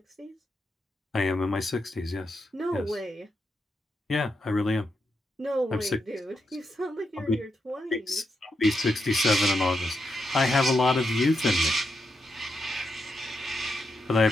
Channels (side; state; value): both; normal; correlation 0.84